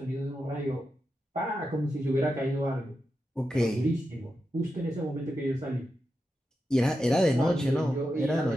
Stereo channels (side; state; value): both; normal; correlation 0.88